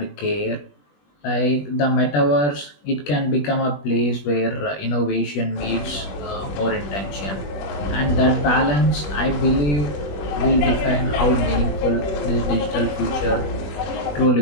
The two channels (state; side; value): late; right; 20 ms